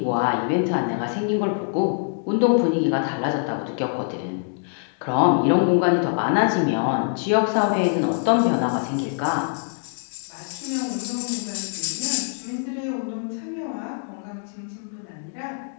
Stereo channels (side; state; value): right; silent; 63 dB below the other